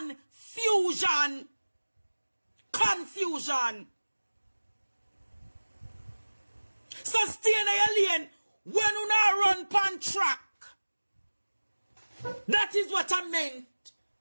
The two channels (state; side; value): inverted; both; correlation -1.00